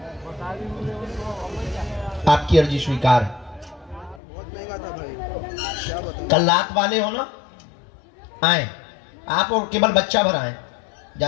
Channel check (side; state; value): right; drops out; at 4.2 s